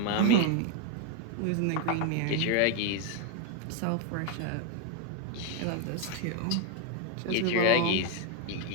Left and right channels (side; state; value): both; different; correlation 0.01